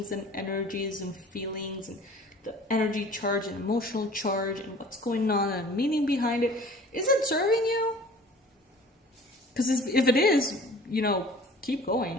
and energies and feelings and the energy charge and emotional charge and what's going on and meaning behind it? Is it serving you? Because if it is, you know, keep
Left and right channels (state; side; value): normal; both; correlation 0.47